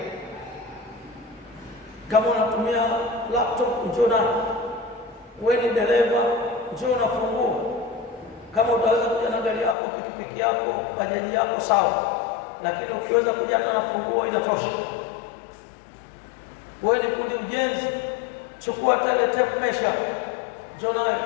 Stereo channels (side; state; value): right; drops out; at 9.8 s